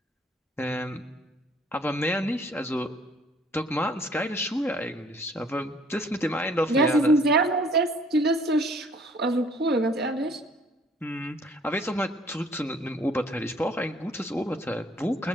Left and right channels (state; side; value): normal; both; correlation 0.58